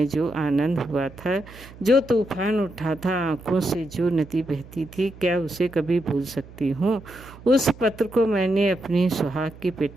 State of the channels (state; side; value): noise; right; hum, 19 dB below the sound